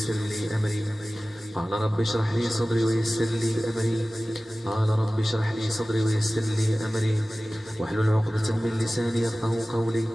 لي أمري. قال رب اشرح لي صدري ويسر لي أمري. قال رب اشرح لي صدري ويسر لي أمري واحلل عقدة من لساني يفقهوا قولي.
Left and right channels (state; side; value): normal; both; correlation 0.97